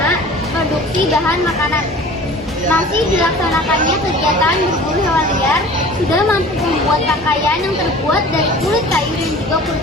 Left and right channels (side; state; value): both; normal; correlation 0.43